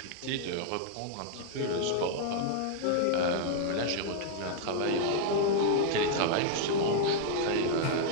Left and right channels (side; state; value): both; different; correlation 0.00